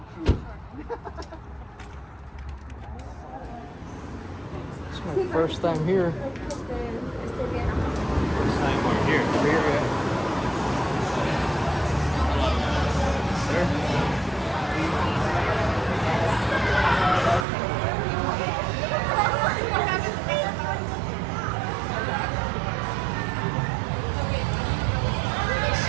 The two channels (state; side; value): drops out; left; at 17.4 s